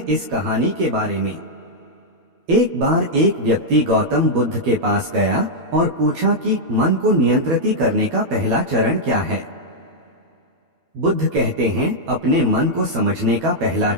इस कहानी के बारे में। एक बार एक व्यक्ति गौतम बुद्ध के पास गया और पूछा कि मन को नियंत्रित करने का पहला चरण क्या है। बुद्ध कहते हैं, अपने मन को समझने का पहला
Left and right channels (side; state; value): left; late; 12 ms